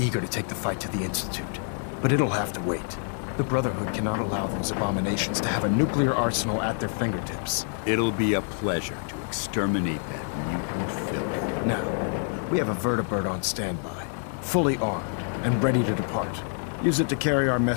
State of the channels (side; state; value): right; silent; 56 dB below the other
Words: to take the fight to the Institute, but it'll have to wait. The Brotherhood cannot allow those abominations to have a nuclear arsenal at their fingertips. It'll be a pleasure to exterminate that mutant filth. Now, we have a vertibird on standby, fully armed and ready to depart. Use it to carry our